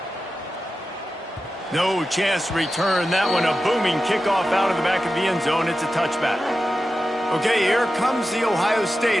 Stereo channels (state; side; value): normal; both; correlation 0.92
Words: No chance to return that one. A booming kickoff out of the back of the end zone. It's a touchback. Okay, here comes the Ohio